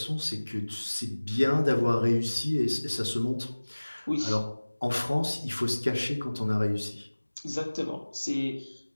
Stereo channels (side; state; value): both; inverted; correlation -1.00